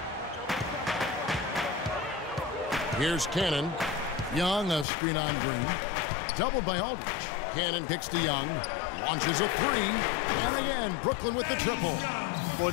Here's Cannon. Young, a screen on Green. Doubled by Aldridge. Cannon kicks to Young. Launches a 3. And again, Brooklyn with the triple. Boy,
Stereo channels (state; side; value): drops out; right; at 4.9 s